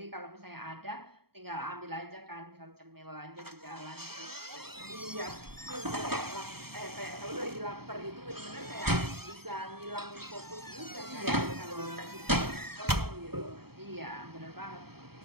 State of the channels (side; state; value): left; late; 0.96 ms